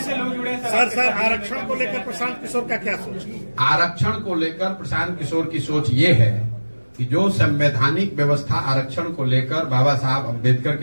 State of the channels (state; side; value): inverted; both; correlation -1.00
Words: आरक्षण को लेकर प्रशांत किशोर का क्या सोच? आरक्षण को लेकर प्रशांत किशोर की सोच ये है कि जो संवैधानिक व्यवस्था आरक्षण को लेकर बाबा साहब अम्बेडकर